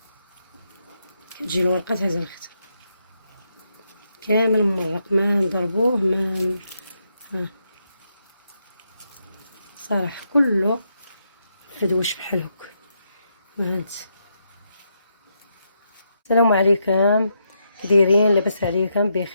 كتجي الورقه تهز الخت كامل ممرق، ما نضربوه ما صراحه كله فدوش بحال هكا. هانت. السلام عليكم، كدايرين؟ لاباس عليكم؟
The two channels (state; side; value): inverted; both; correlation -0.80